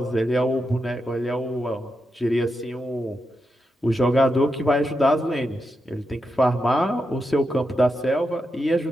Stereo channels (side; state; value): both; normal; correlation 0.86